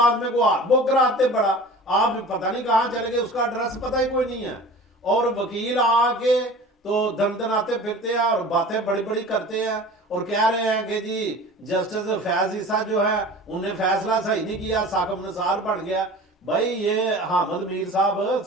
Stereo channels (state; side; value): normal; both; correlation 0.40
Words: میں کو وہ کراتے پڑا، آپ پتہ نہیں کہاں چلے گئے، اس کا ایڈریس پتہ ہی کوئی نہیں ہے. اور وکیل آ کے تو دن دناتے پھرتے ہیں اور باتیں بڑی بڑی کرتے ہیں اور کہہ رہے ہیں کہ جی جسٹس فیض عیسیٰ جو ہے انہیں فیصلہ صحیح نہیں کیا، ثاقب نثار بن گیا. بھائی یہ حامد میر صاحب